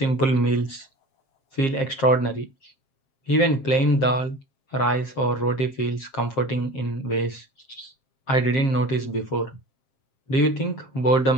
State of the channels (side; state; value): right; late; 7.5 ms